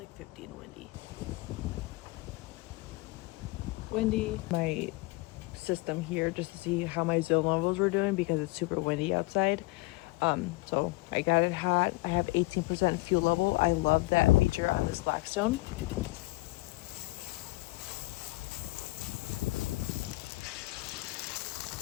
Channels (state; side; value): quieter; right; 22.5 dB